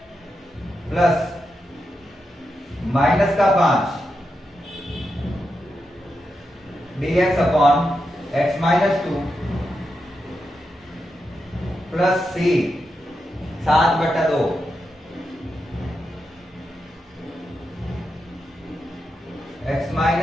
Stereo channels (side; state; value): both; normal; correlation 0.87